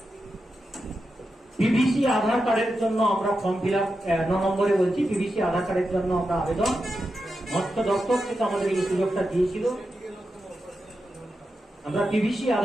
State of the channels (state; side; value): normal; both; correlation 0.89